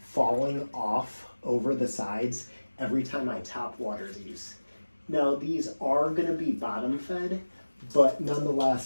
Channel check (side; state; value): both; inverted; correlation -1.00